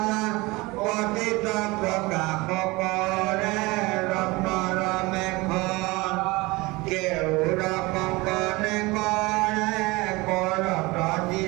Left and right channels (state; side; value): quieter; left; 22.9 dB